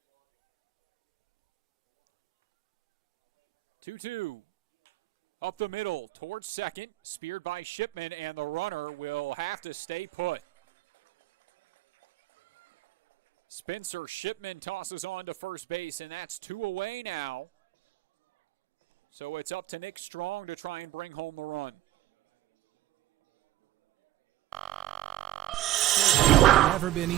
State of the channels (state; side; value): quieter; left; 14.9 dB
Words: Two-two. Up the middle towards second, speared by Shipman, and the runner will have to stay put. Spencer Shipman tosses on to first base, and that's 2 away now. So it's up to Nick Strong to try and bring home the run. Never been